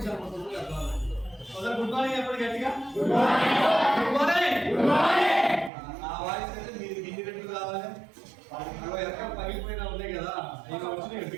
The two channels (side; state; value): left; drops out; at 5.7 s